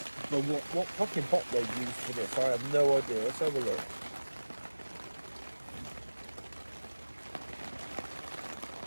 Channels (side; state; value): both; inverted; correlation -1.00